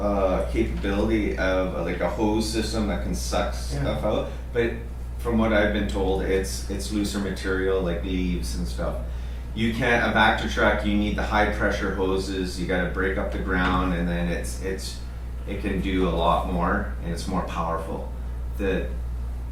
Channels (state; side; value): identical; both; correlation 1.00